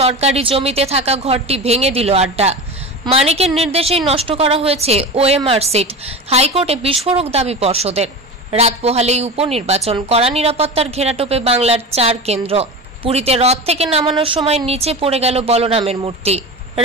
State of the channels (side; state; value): both; normal; correlation 0.27